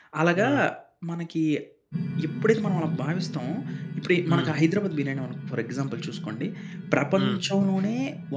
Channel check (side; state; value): both; identical; correlation 1.00